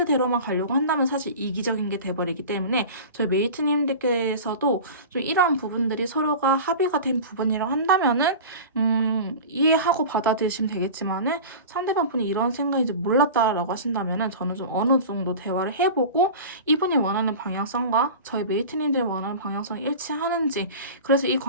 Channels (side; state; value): both; inverted; correlation -0.34